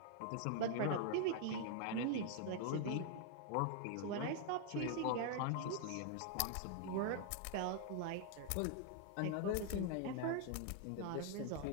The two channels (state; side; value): different; both; correlation 0.00